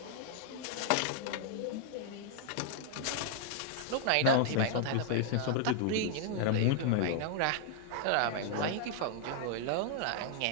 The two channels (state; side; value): different; both; correlation 0.00